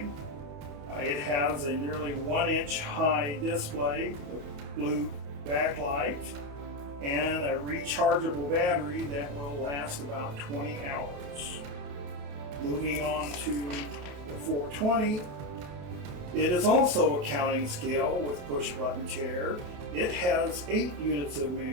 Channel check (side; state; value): left; late; 28 ms